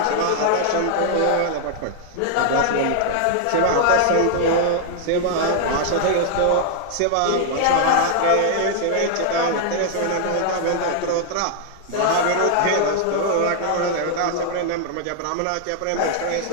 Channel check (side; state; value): both; different; correlation 0.00